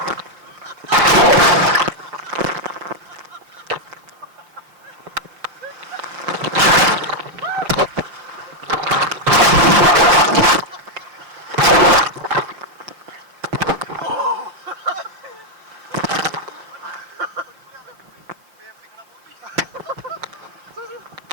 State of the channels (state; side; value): late; left; 5.6 ms